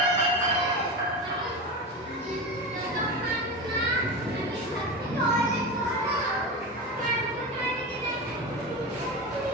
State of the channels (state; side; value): normal; both; correlation 0.23